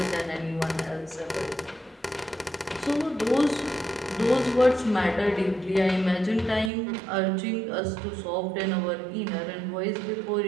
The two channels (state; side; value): drops out; left; at 6.7 s